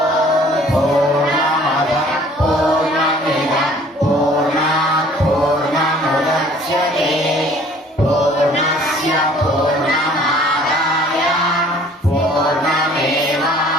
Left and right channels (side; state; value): both; normal; correlation 0.54